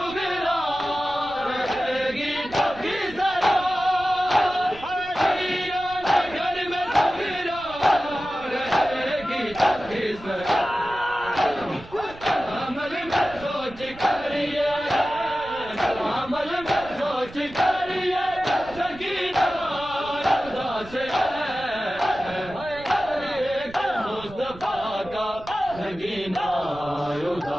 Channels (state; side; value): noise; right; rumble, 18 dB below the sound